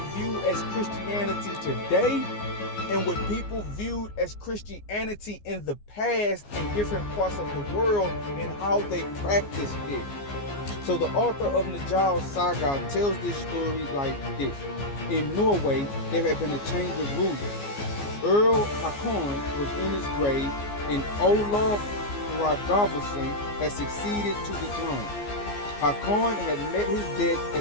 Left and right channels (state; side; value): late; right; 14 ms